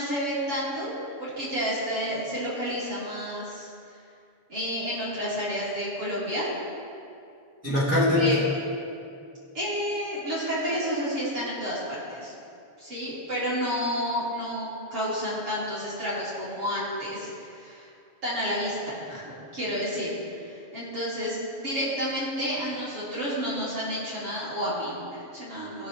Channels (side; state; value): left; late; 7.2 ms